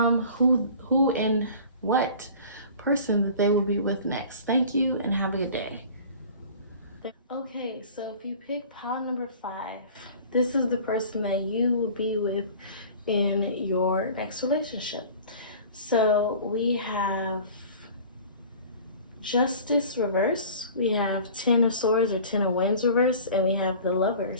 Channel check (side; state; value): both; inverted; correlation -0.43